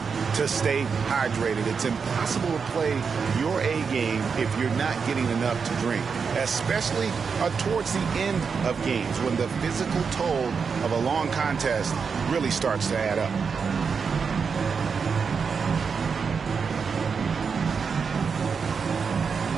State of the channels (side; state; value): left; quieter; 5.7 dB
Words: to stay hydrated. It's impossible to play your A game if you're not getting enough to drink, especially towards the end of games when the physical toll of a long contest really starts to add up.